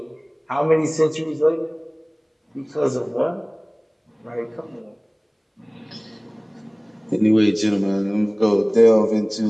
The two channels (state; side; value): identical; both; correlation 1.00